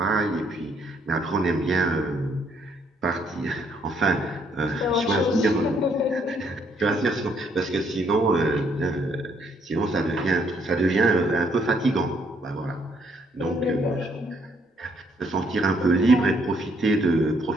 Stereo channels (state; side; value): normal; both; correlation 0.70